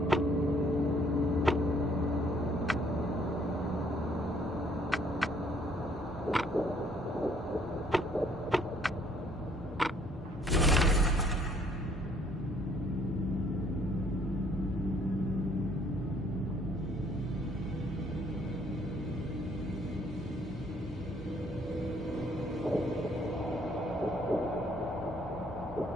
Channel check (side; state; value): both; normal; correlation 0.63